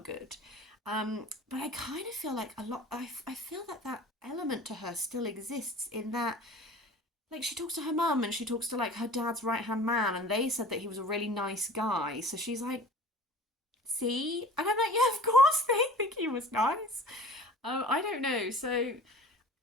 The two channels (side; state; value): both; normal; correlation 0.42